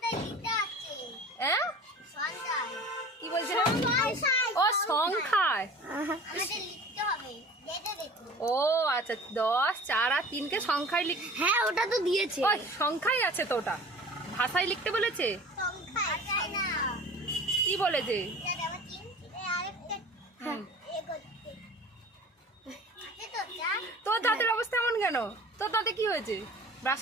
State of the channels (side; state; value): both; normal; correlation 0.41